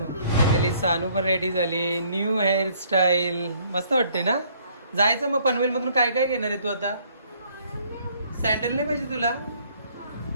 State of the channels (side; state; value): both; inverted; correlation -0.63